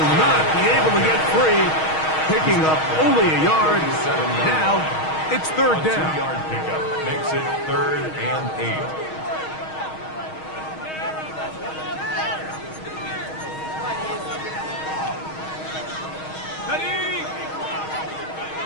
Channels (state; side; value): late; right; 6.4 ms